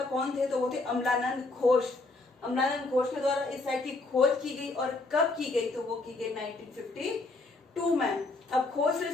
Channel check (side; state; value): right; quieter; 3.3 dB